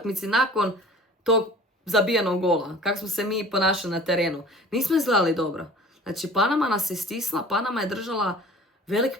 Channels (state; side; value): normal; both; correlation 0.45